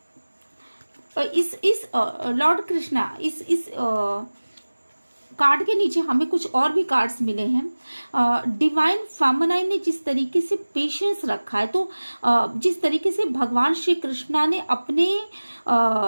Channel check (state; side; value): inverted; both; correlation -1.00